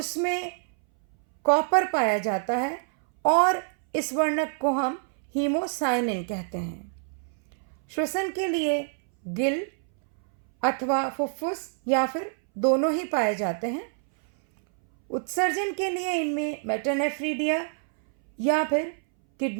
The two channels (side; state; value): left; silent; 61 dB below the other